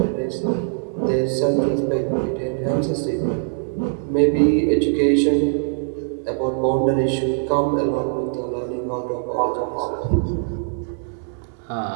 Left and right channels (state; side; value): silent; left; digital silence